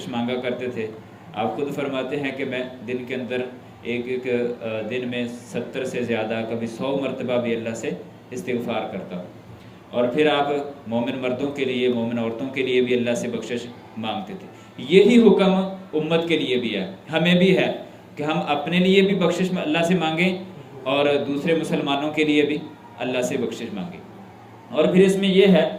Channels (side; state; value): both; identical; correlation 1.00